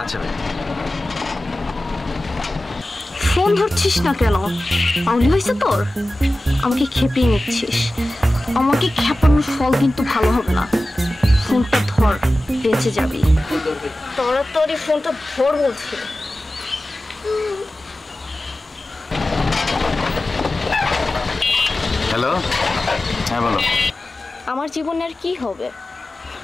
আচ্ছা ভাই। ফোন ধরছিস না কেন? আউলি হয়েছে তোর? আমাকে খেপিয়ে নিচ্ছিস। আমাকে খেপানোর ফল কিন্তু ভালো হবে না। ফোনটা ধর, বেঁচে যাবি। তাড়াতাড়ি ফোনটা ধর বলছি। হ্যালো, হ্যাঁ বলো। আমার জীবনে আর কি হবে?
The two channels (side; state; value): both; normal; correlation 0.95